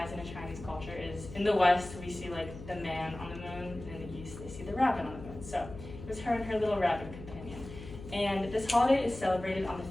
into Chinese culture is, in the West, we see the man on the moon, and in the East, they see the rabbit on the moon. So it was her and her little rabbit companion. And this holiday is celebrated on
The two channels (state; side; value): noise; left; hum, 13 dB below the sound